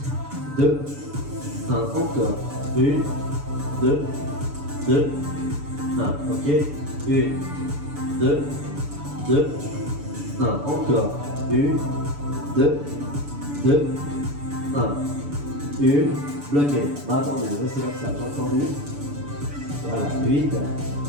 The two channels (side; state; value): left; late; 6.9 ms